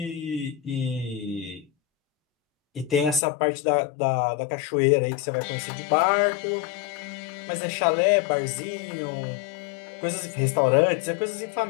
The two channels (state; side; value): drops out; right; at 3.2 s